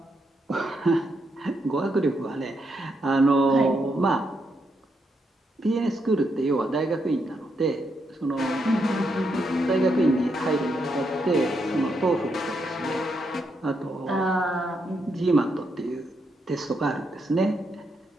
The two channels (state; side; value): normal; both; correlation 0.80